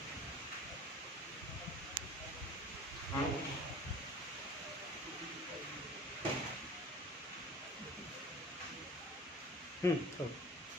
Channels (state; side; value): normal; both; correlation 0.44